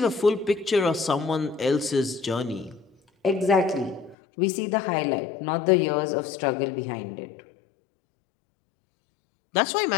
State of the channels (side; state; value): right; drops out; at 4.2 s